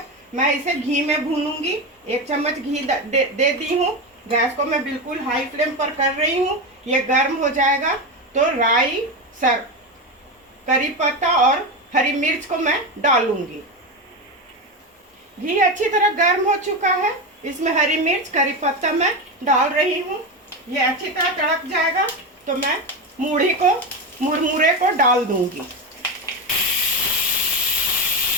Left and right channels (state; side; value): normal; both; correlation 0.16